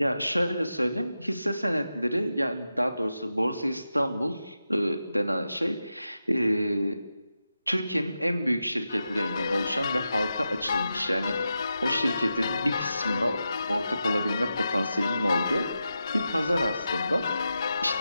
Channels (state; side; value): inverted; both; correlation -0.90